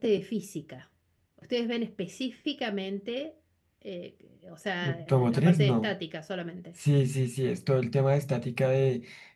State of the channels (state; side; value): identical; both; correlation 1.00